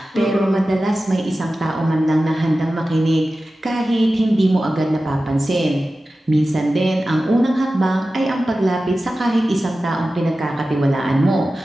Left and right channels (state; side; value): normal; both; correlation 0.95